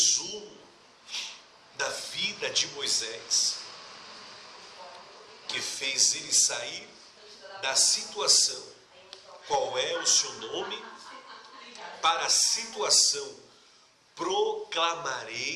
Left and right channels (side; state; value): both; identical; correlation 1.00